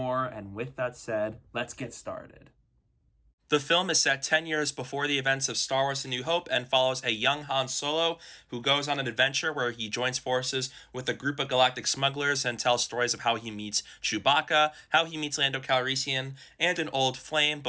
And with that said, let's get started. The film is set 10 years before the events of Star Wars A New Hope and follows a young Han Solo who goes on an adventure where he joins forces with a group of galactic smugglers and tells stories of how he meets Chewbacca, how he meets Lando Calrissian, and an old flame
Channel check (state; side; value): identical; both; correlation 1.00